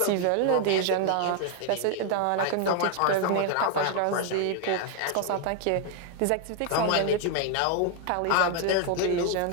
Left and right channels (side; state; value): both; different; correlation 0.00